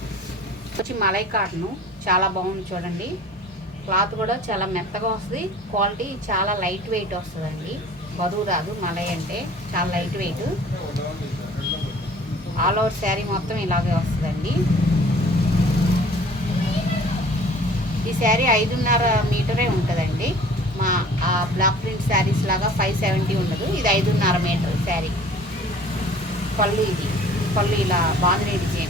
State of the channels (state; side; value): normal; both; correlation 0.48